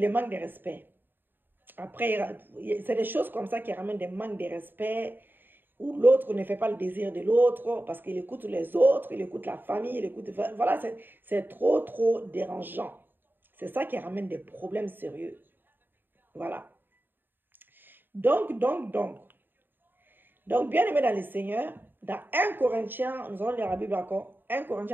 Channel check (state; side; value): late; left; 0.094 ms